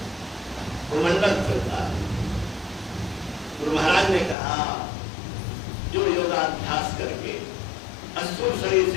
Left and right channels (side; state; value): right; drops out; at 4.4 s